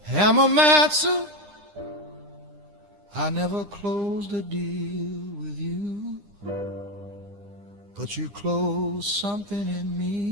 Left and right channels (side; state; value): left; late; 9.9 ms